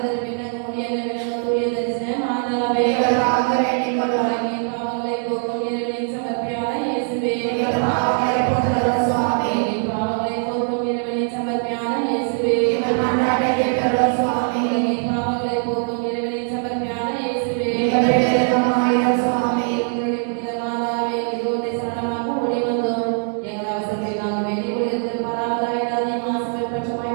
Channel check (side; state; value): left; silent; 56 dB below the other